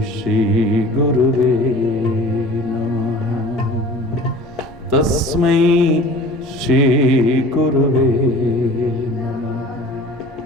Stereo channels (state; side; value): normal; both; correlation 0.43